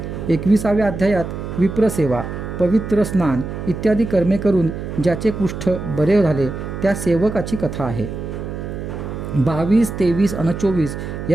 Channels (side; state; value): right; noise; hum, 7 dB below the sound